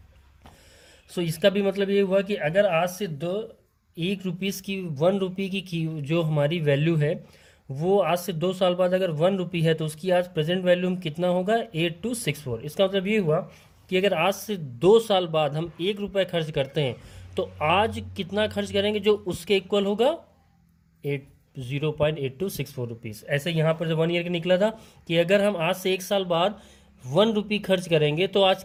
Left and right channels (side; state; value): both; identical; correlation 1.00